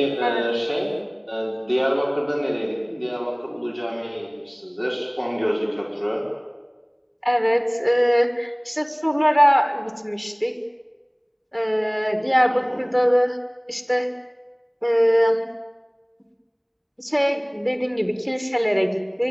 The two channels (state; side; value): identical; both; correlation 1.00